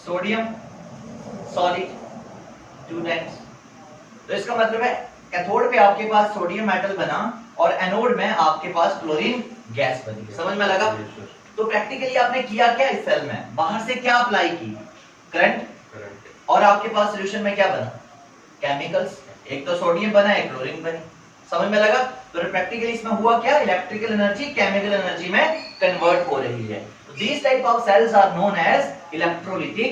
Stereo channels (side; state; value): both; identical; correlation 1.00